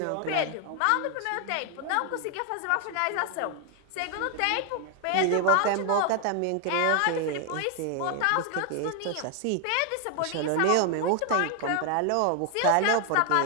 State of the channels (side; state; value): both; different; correlation 0.00